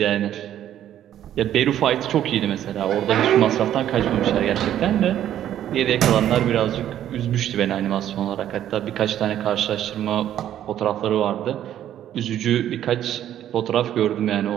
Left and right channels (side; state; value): left; quieter; 11.3 dB